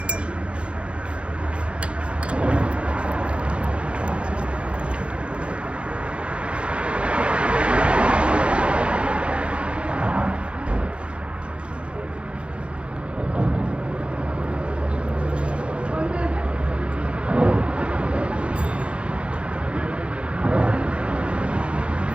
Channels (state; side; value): late; left; 0.059 ms